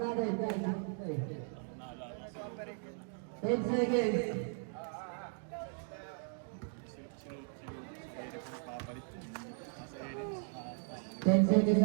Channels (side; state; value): left; silent; 53 dB below the other